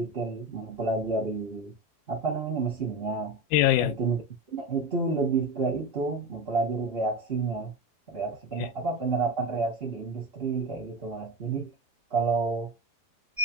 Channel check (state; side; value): normal; both; correlation 0.21